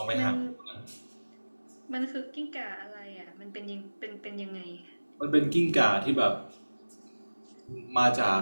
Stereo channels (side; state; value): both; inverted; correlation -1.00